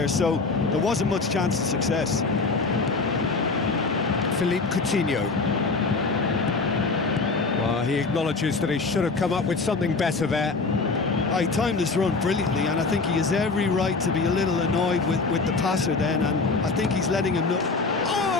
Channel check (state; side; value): quieter; right; 4.1 dB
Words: so there wasn't much chance of success. Philippe Coutinho. Well, he acknowledges that he should have come up with something better there. He timed his run brilliantly, and I think he has every right to be a little annoyed with the passer then, and I think he's letting him know.